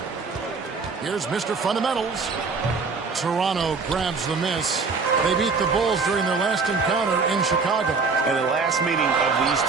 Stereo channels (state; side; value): quieter; left; 4.6 dB